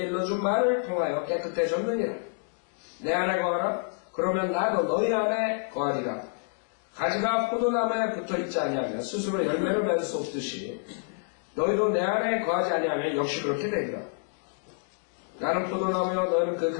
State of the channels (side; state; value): right; silent; digital silence